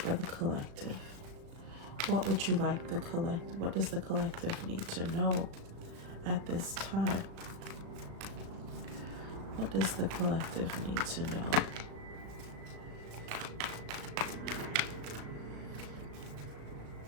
the collective? What would you like what does the collective need to know at this time? What does the collective need to know?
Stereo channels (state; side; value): late; left; 36 ms